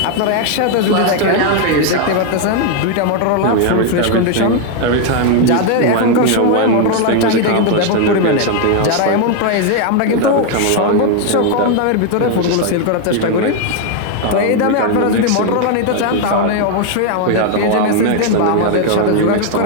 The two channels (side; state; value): both; different; correlation 0.01